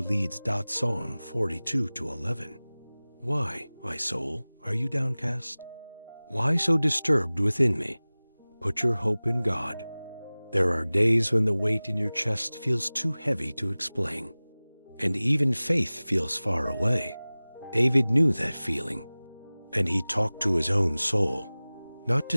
leads. Psalm 42 to 11. Why, my soul, are you downcast? Why so disturbed within me? Put your hope in God. There are days when the weight in your chest feels too heavy to explain, and even faith feels far away. David knew that feeling, and he talked to his own soul, not to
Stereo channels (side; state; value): both; inverted; correlation -0.99